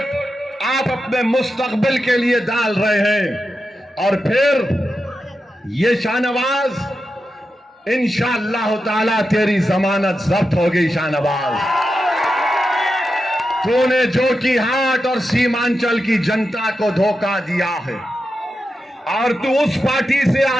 आप अपने मुस्तकबिल के लिए डाल रहे हैं। और फिर ये शाहनवाज इंशाअल्लाह ताला तेरी जमानत जब्त होगी शाहनवाज। तूने जोकीहाट और सीमांचल की जनता को धोखा दिया है और तू उस पार्टी से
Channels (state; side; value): normal; both; correlation 0.89